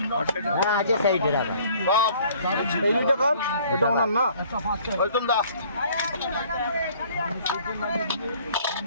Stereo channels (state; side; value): inverted; both; correlation -0.56